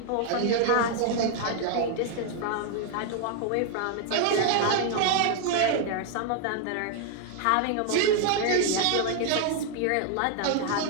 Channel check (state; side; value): different; both; correlation 0.00